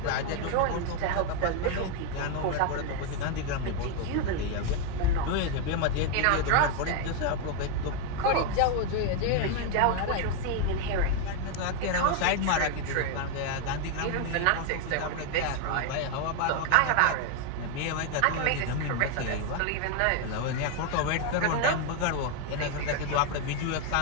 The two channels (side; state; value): both; different; correlation 0.01